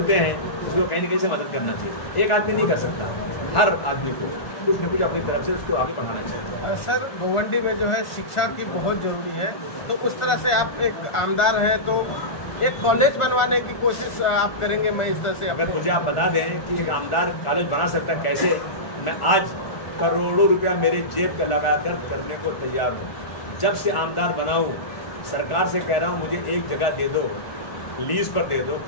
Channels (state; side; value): late; right; 1.4 ms